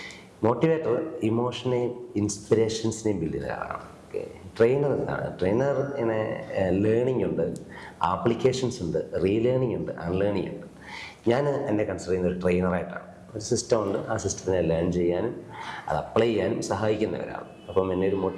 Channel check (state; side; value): identical; both; correlation 1.00